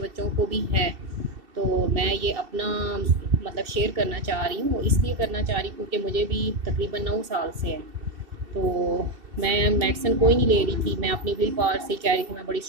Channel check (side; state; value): left; late; 2.7 ms